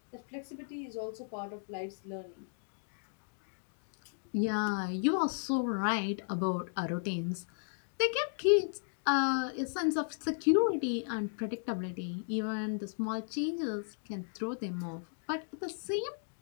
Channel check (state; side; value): silent; right; digital silence